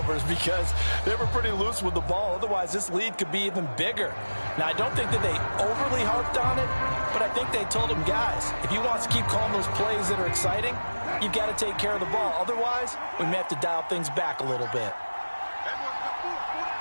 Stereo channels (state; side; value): inverted; both; correlation -1.00